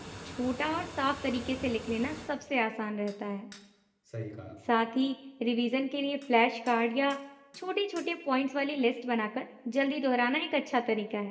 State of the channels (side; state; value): both; identical; correlation 1.00